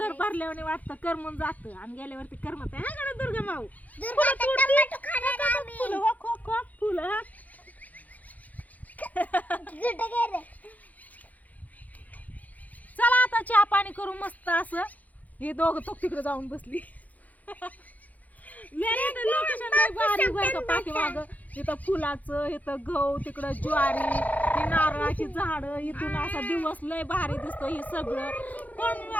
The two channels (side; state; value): right; late; 0.078 ms